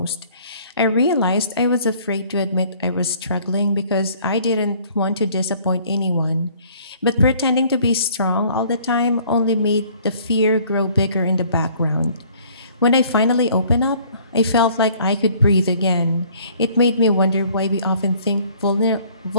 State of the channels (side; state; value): both; inverted; correlation -0.57